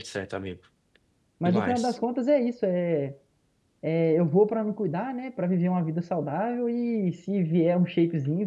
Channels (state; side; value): identical; both; correlation 1.00